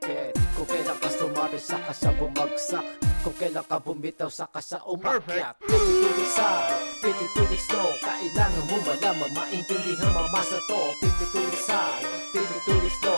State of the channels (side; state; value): both; inverted; correlation -1.00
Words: Kung kailan ka sumabit, saka siya bumagsak. Kung kailan ka bumitaw, saka siya umakyat. 52 weeks high, 52 weeks low. Kailangan mo malaman, maintindihan, mamasa to. 52 weeks high, 52 weeks